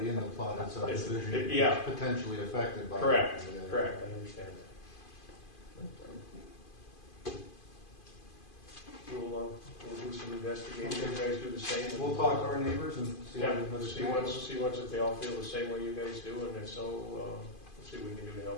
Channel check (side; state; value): right; late; 2.5 ms